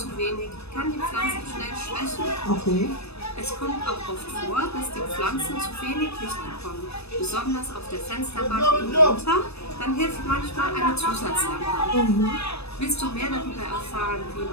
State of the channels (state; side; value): late; right; 0.79 ms